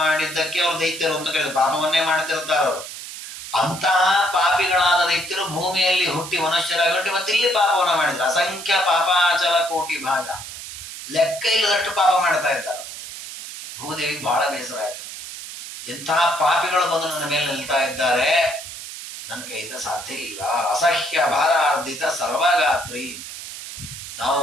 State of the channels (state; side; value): noise; right; hiss, 11 dB below the sound